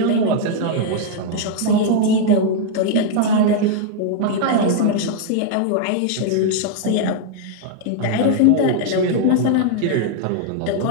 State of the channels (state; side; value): different; both; correlation 0.00